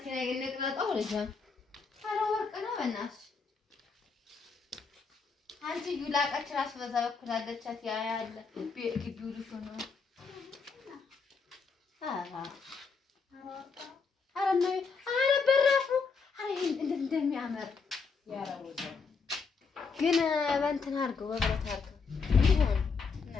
ነቅለጣው ልጅ ኧረ ወርቅ ነው በእናትሽ። አንቺ ዩላቃች ራስ በዛ በኩል አለቻት። ያ ያለ ግቢው ልጅ ነው። ኧረ በራፉ እንዴት እንደሚያምር ግን በእንትን አድርገው በብረት አድርገው ይሆን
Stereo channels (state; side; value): quieter; right; 5.0 dB